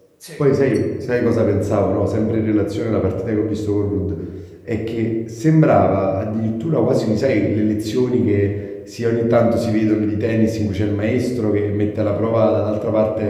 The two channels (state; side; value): identical; both; correlation 1.00